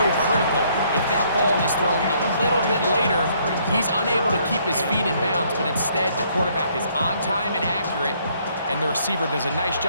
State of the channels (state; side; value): inverted; both; correlation -0.66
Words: critical. If that ball is thrown a little bit later, he's unable to keep his feet in bounds, but instead the quarterback is on time and accurate, and the receiver does a nice